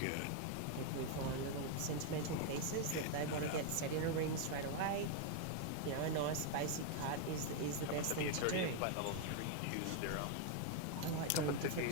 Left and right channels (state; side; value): different; both; correlation 0.01